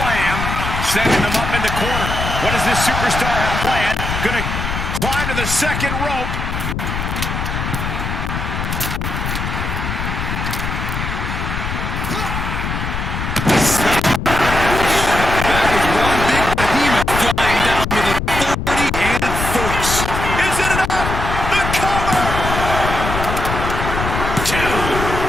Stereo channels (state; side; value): noise; left; rumble, 3 dB below the sound